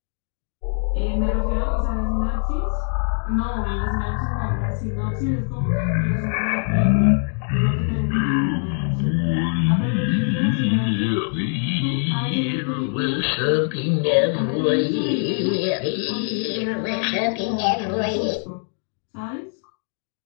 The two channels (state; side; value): silent; right; 59 dB below the other